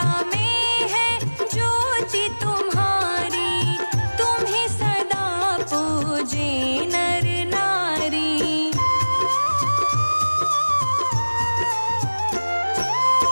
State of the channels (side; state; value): both; inverted; correlation -1.00